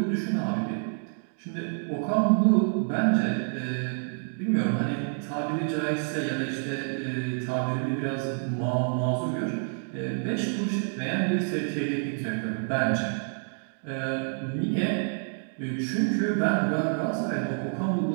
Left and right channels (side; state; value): left; silent; 59 dB below the other